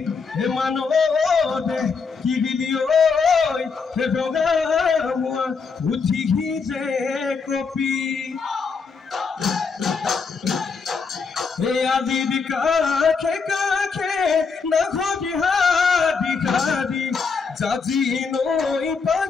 মানৱদে কি দিলি ঐ বগা মোৱা উঠিহি যে copy Adi kake na khodi hadi jaji noi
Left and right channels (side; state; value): right; quieter; 5.1 dB